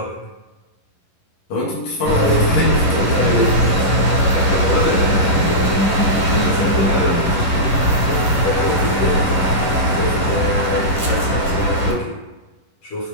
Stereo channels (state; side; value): late; right; 11 ms